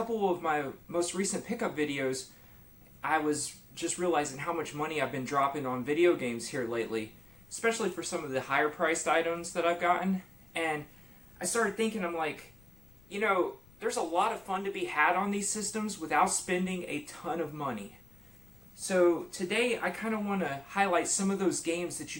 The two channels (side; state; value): left; noise; rumble, 26 dB below the sound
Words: of my most recent pickup videos, I was just realizing how much money I've been dropping on video games here lately, especially for some of the higher priced items that I've gotten. And I started thinking, I'm like, you know, there's a lot of fun to be had on these systems without spending a ton of money. So today I kind of want to highlight some of those games that